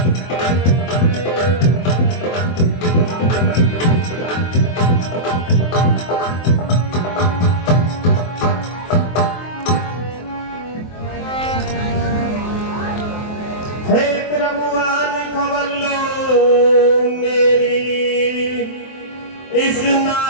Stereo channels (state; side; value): late; right; 23 ms